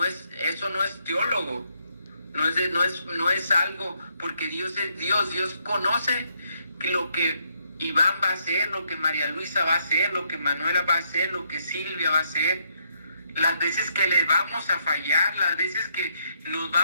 eso no es teólogo, no es algo, porque Dios es Dios. Dios conoce lo que Iván va a hacer, lo que María Luisa va a hacer, lo que Manuela va a hacer, lo que Silvia va a hacer, las veces que le vamos a fallar, las veces que nos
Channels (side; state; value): both; inverted; correlation -0.74